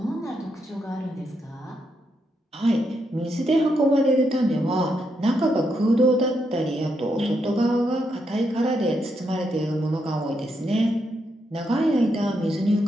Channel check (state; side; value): normal; both; correlation 0.80